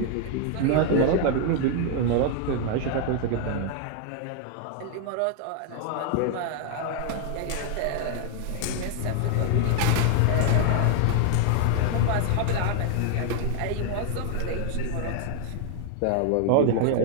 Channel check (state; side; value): different; both; correlation 0.00